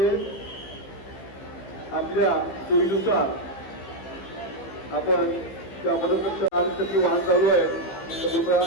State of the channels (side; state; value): right; late; 15 ms